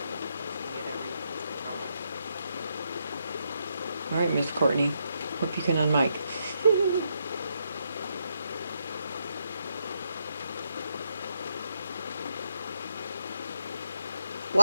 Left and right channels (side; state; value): both; inverted; correlation -0.80